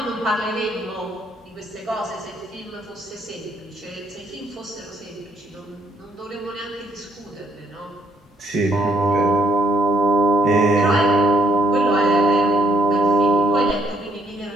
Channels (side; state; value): both; normal; correlation 0.69